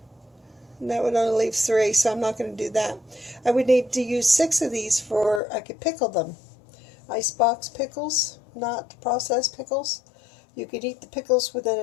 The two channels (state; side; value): drops out; right; at 5.4 s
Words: and that would only leave 3, so I'm not going to do that. I would need to use 6 of these for, I could pickle them. Icebox pickles, not processed pickles. You could eat the pickles within